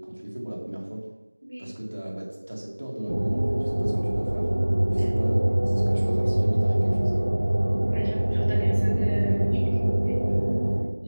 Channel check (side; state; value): both; inverted; correlation -1.00